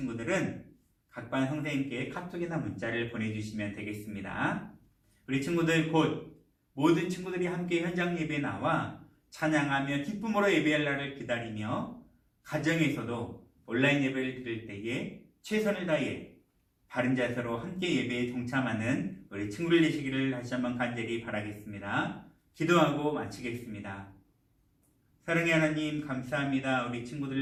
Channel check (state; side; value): identical; both; correlation 1.00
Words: 각반 선생님께 카톡이나 문자를 보내주시면 되겠습니다. 우리 친구들 곧 모든 친구들이 함께 현장 예배에 나와 찬양하며 기쁨으로 예배할 날을 기다리며 가정에서도 온라인 예배를 드릴 때에 최선을 다해 바른 자세로 함께 예배에 동참하는 우리 친구들 되시기를 다시 한번 간절히 바라겠습니다. 기도하고 마치겠습니다. 사랑의 하나님 감사합니다. 우리